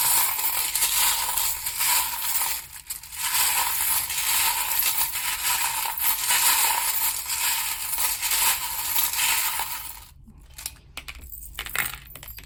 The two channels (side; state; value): both; identical; correlation 1.00